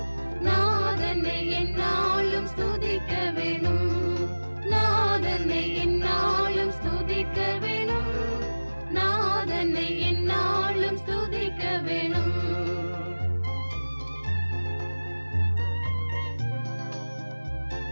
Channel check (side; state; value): both; inverted; correlation -1.00